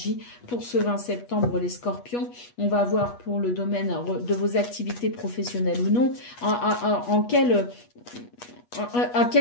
pour ce 20 septembre, les scorpions. On va voir pour le domaine de vos activités professionnelles ou non, à quelle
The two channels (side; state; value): right; late; 8.3 ms